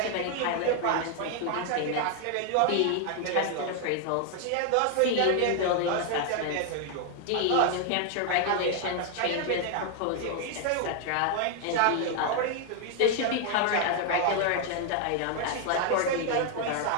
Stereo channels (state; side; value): different; both; correlation 0.00